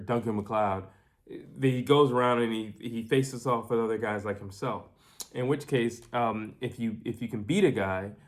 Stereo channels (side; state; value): both; identical; correlation 1.00